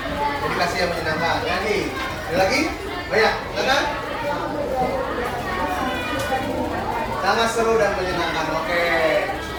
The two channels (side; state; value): both; identical; correlation 1.00